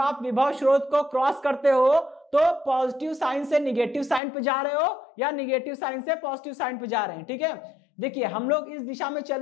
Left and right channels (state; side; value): drops out; right; at 4.2 s